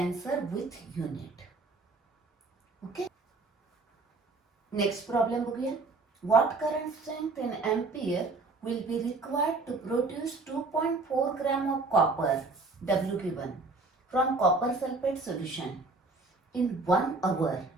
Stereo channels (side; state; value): left; quieter; 3.6 dB